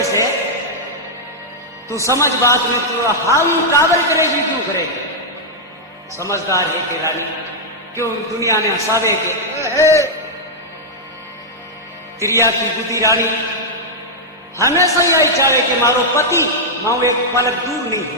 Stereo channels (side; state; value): both; normal; correlation -0.05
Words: है तू समझ बात में, तू हाउ काबल करेगी क्यों करेगी? समझदार है कि रानी क्यों दुनिया ने हंसावे के तिरिया की बुद्धि रानी हमेशा ही आई चाहे कि मारो पति माओ एक पलक दूर नहीं